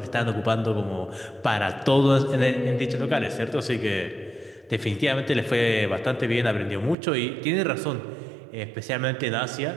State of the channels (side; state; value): left; drops out; at 7.0 s